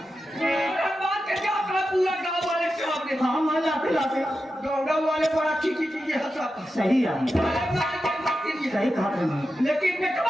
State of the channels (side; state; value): both; normal; correlation 0.90